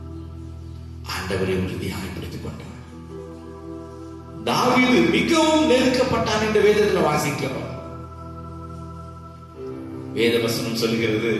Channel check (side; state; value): both; identical; correlation 1.00